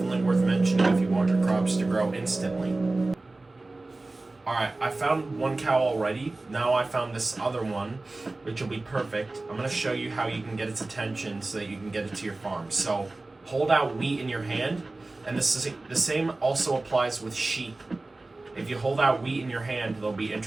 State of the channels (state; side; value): quieter; left; 3.1 dB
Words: worth mentioning if you want your crops to grow instantly. Alright, I found one cow already. Now I found this other one, which will be perfect. I'm going to show you how you can get its attention so that you can get it to your farm. So hold out wheat in your hand, and the same also applies with sheep. If you hold out wheat in your hand, they'll be